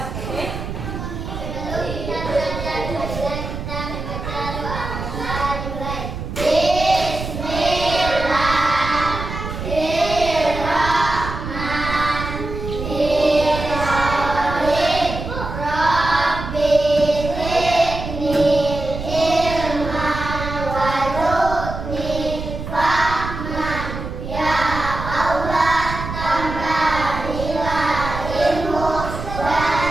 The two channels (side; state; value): right; noise; rumble, 7 dB below the sound